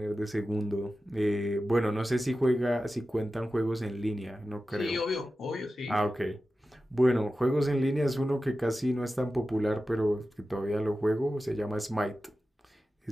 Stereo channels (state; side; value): normal; both; correlation 0.93